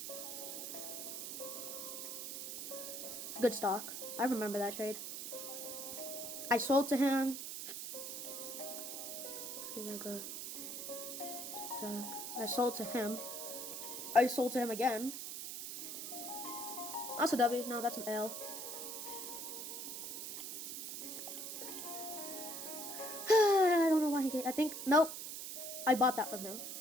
It's good stock. I remember that trade. I sold to him. I sold to him. I sold to him again. That's a W. No, that's an L. I don't know why he gave. I think. Nope. I bought that from him.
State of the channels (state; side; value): noise; right; hiss, 6 dB below the sound